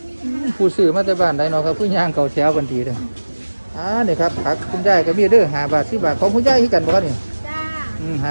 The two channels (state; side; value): inverted; both; correlation -1.00